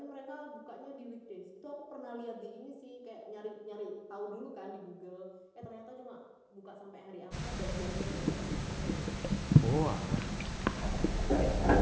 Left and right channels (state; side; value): identical; both; correlation 1.00